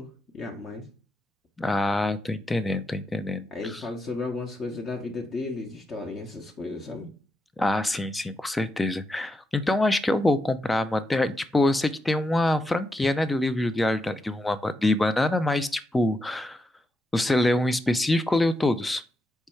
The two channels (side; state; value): both; normal; correlation 0.85